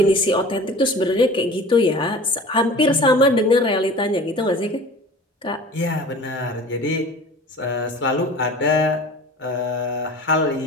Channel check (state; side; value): normal; both; correlation 0.41